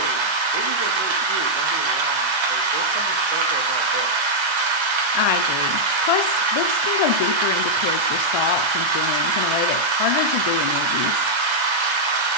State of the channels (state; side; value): late; left; 1.3 ms